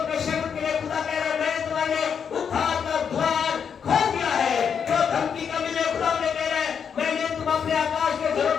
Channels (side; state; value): right; quieter; 7.1 dB